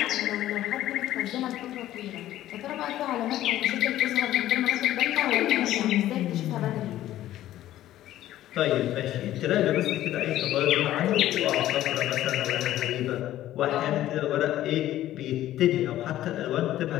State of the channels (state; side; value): quieter; right; 13.6 dB